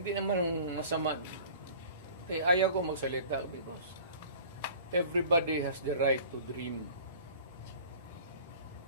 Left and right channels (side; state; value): both; inverted; correlation -0.45